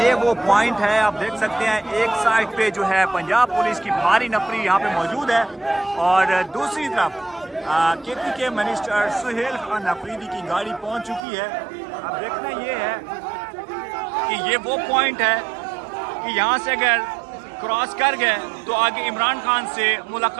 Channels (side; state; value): left; drops out; at 11.2 s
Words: वो पॉइंट है, आप देख सकते हैं एक साइड पे जो है पंजाब पुलिस की भारी नफरी यहाँ पे मौजूद है और दूसरी तरफ केपी के मिनिस्टर सुहेल खान अफरीदी की गाड़ी पहुँच चुकी है। अब देखना ये है कि ये वो पॉइंट है कि यहाँ से अगर क्रॉस कर गए तो आगे इमरान खान से